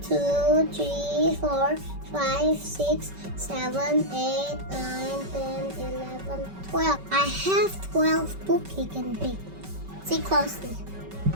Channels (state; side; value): late; left; 5.2 ms